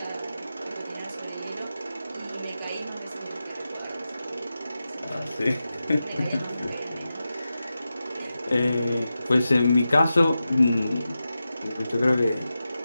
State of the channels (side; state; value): both; inverted; correlation -0.92